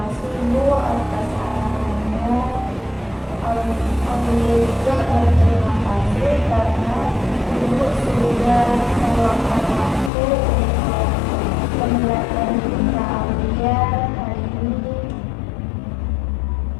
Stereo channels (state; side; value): drops out; right; at 10.1 s